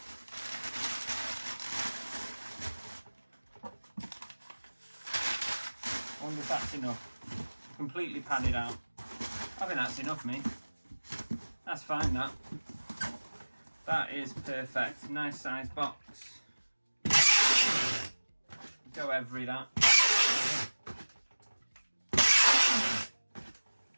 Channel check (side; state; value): both; inverted; correlation -1.00